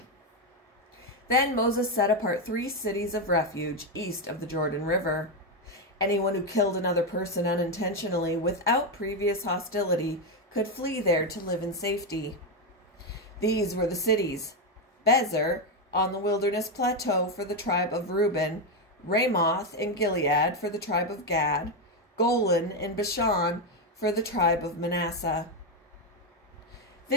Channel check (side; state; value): both; normal; correlation 0.07